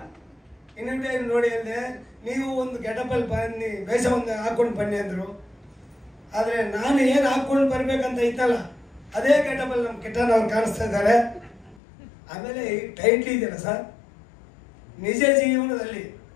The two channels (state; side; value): drops out; right; at 11.8 s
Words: ಇನ್ವಿಟೇಷನ್ ನೋಡಿ ಅಂದೆ, ನೀವು ಒಂದು ಗೆಟಪ್ಪಲ್ಲಿ ಬನ್ನಿ, ವೇಷ ಒಂದು ಹಾಕ್ಕೊಂಡು ಬನ್ನಿ ಅಂದರು. ಆದರೆ ನಾನು ಏನು ಹಾಕ್ಕೊಂಡು ಬರ್ಬೇಕಂತ ಇತ್ತಲ್ಲ, ಅದೇ ಗೆಟಪ್ಪಲ್ಲಿ ನಮ್ಮ ಕಿಟ್ಟಣ್ಣ ಅವ್ರು ಕಾಣಿಸ್ತಾ ಇದ್ದಾರೆ. ಆಮೇಲೆ ಈ ಟೈಟ್ಲ್ ಇದೆಯಲ್ಲ ಸರ್, ನಿಜ ಜೀವನದಲ್ಲಿ